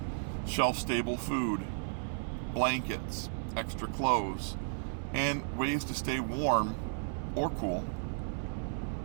Shelf-stable food, blankets, extra clothes, and ways to stay warm or cool.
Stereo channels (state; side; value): silent; left; 55 dB below the other